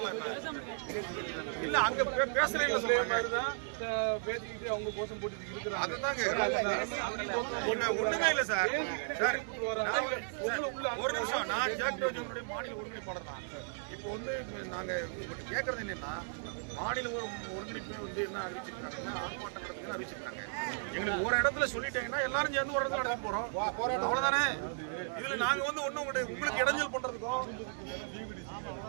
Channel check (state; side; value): silent; left; digital silence